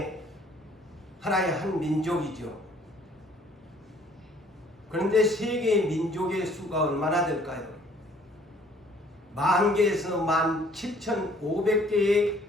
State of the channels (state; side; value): normal; both; correlation 0.58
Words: 하나의 한 민족이죠. 그런데 세계의 민족의 수가 얼마나 될까요? 10,000개에서 17,500개의